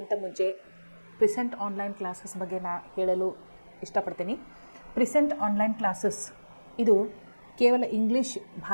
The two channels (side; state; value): both; inverted; correlation -1.00